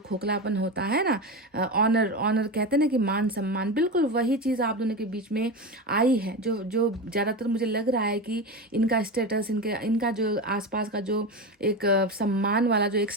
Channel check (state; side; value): normal; both; correlation 0.21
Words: खोखलापन होता है ना, ऑनर कहते हैं ना कि मान सम्मान, बिल्कुल वही चीज़ आप दोनों के बीच में आई है। जो ज़्यादातर मुझे लग रहा है कि इनका स्टेटस, इनका जो आसपास का जो एक सम्मान वाला जो एक